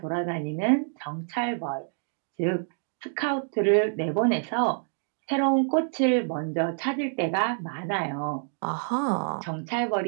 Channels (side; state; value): left; silent; digital silence